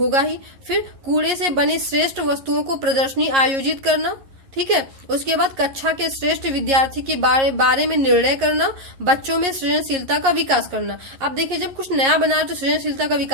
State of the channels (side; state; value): left; late; 11 ms